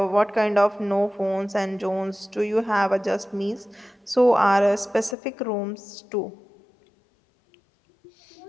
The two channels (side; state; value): right; drops out; at 5.2 s